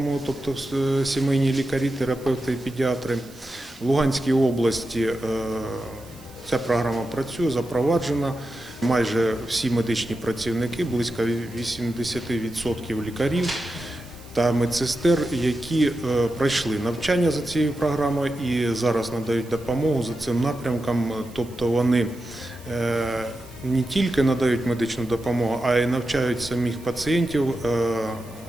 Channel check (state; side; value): noise; right; hiss, 23 dB below the sound